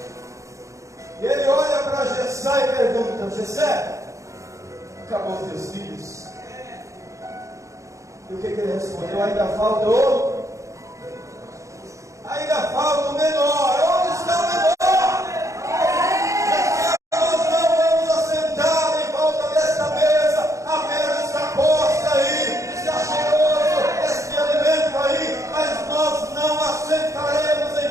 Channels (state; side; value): late; left; 0.15 ms